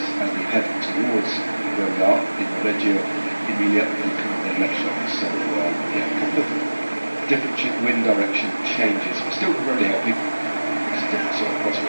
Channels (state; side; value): inverted; both; correlation -1.00